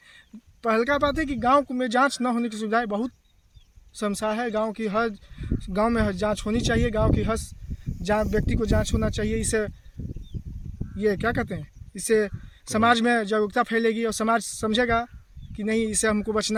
पहला बात है कि गांव में जांच ना होने की सुविधाएं बहुत समस्या है। गांव की हर गांव में जांच होनी चाहिए, गांव की हर व्यक्ति को जांच होना चाहिए। इससे ये क्या कहते हैं, इससे समाज में जागरूकता फैलेगी और समाज समझेगा कि नहीं, इससे हमको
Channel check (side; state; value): both; identical; correlation 1.00